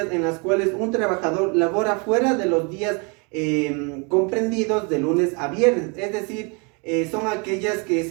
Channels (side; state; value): left; quieter; 33.2 dB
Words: en las cuales un trabajador labora fuera de los días comprendidos de lunes a viernes, es decir, son aquellas que